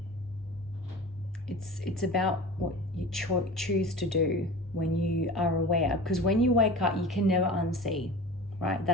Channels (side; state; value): both; normal; correlation 0.35